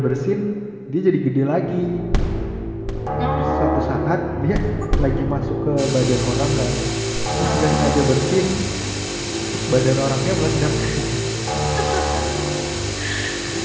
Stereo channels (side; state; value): both; identical; correlation 1.00